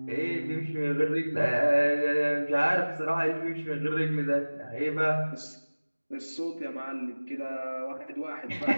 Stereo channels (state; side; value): inverted; both; correlation -1.00